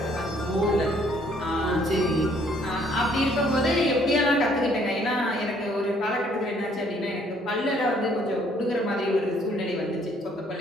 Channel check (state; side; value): normal; both; correlation 0.64